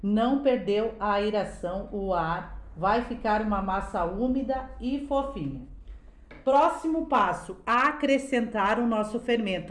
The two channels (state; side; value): identical; both; correlation 1.00